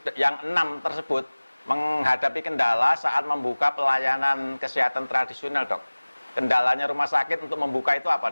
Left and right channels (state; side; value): inverted; both; correlation -1.00